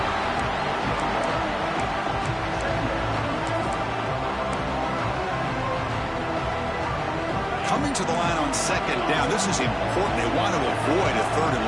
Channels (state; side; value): identical; both; correlation 1.00